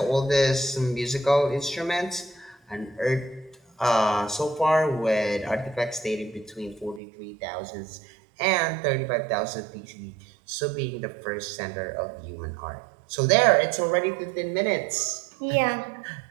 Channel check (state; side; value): drops out; left; at 7.0 s